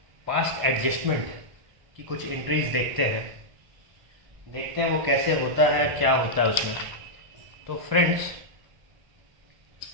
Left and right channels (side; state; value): left; late; 1.5 ms